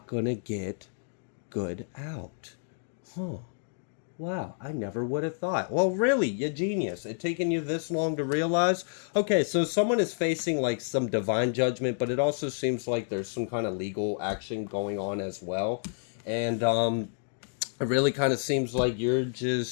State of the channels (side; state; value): right; silent; digital silence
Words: going to get good out. Wow, I never would have thought. Well, really, you genius. It taken you this long to realize? Okay, so someone is facing like some divine judgment, but it also seems like there's some kind of legal action going on as well. And it really kind of seems like you're